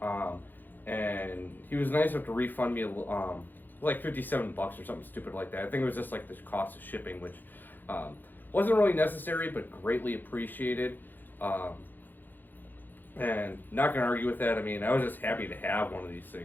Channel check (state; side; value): late; right; 0.089 ms